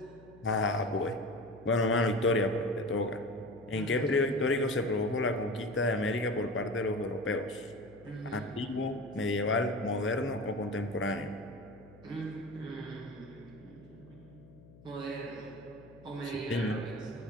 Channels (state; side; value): noise; left; hum, 22 dB below the sound